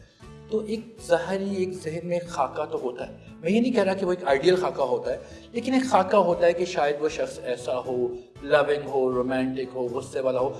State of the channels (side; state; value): both; identical; correlation 1.00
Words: تو ایک ظاہری ایک ذہن میں خاکہ تو ہوتا ہے. میں یہ نہیں کہہ رہا کہ وہ ایک آئیڈیل خاکہ ہوتا ہے، لیکن ایک خاکہ ہوتا ہے کہ شاید وہ شخص ایسا ہو، لونگ ہو، رومانٹک ہو، غصے والا ہو.